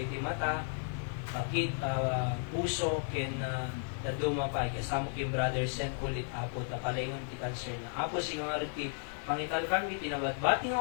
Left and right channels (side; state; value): right; silent; 55 dB below the other